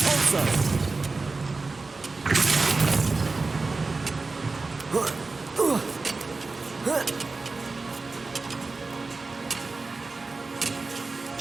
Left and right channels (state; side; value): quieter; left; 3.8 dB